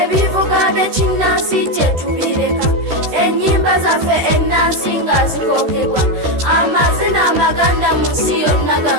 by'ekinnansi kye tubireka ennyimba zaffe ennansi nga zikookebwa amazina amaganda mu nsi yonna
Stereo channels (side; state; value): left; late; 13 ms